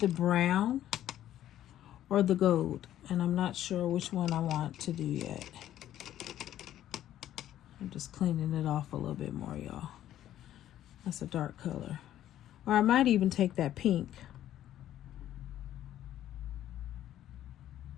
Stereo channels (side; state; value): right; quieter; 12.2 dB